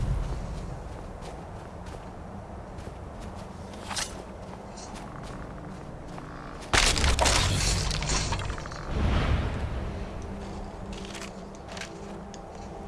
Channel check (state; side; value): identical; both; correlation 1.00